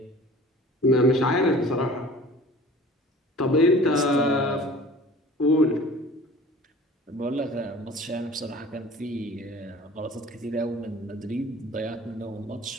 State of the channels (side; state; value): both; normal; correlation 0.45